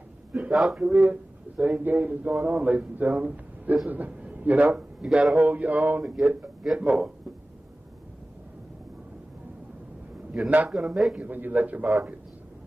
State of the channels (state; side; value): normal; both; correlation 0.97